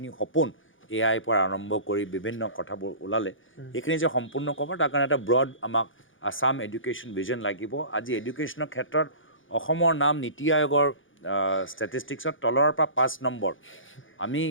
সপোন AI পৰা আৰম্ভ কৰি বিভিন্ন কথাবোৰ ওলালে এইখিনি যে সম্পূৰ্ণ ক'ব তাৰ কাৰণে এটা ব্ৰড আমাক আছাম এডুকেশ্যন ভিজন লাগিব। আজি এডুকেশ্যনৰ ক্ষেত্ৰত অসমৰ নাম নীতি আয়োগৰ ষ্টেটিষ্টিক্সত তলৰ পৰা 5 নম্বৰ। আমি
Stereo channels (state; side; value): late; right; 0.57 ms